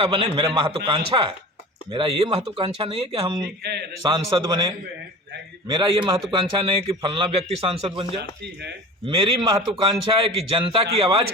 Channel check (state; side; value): normal; both; correlation 0.36